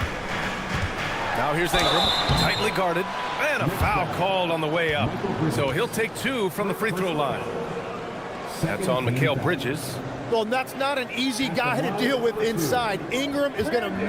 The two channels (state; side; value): identical; both; correlation 1.00